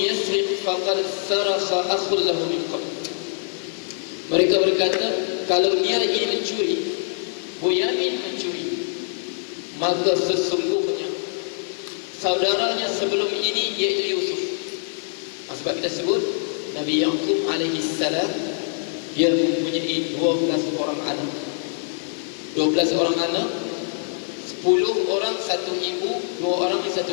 yasriq faqad sarakha akhul lahu min qabl. Mereka berkata, kalau dia ini mencuri, Bunyamin mencuri, maka sesungguhnya saudaranya sebelum ini iaitu Yusuf. Sebab kita sebut Nabi Yaqub alaihi salam, dia mempunyai 12 orang anak. 12 orang anak, 10 orang satu ibu, 2 orang satu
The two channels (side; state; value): right; silent; 60 dB below the other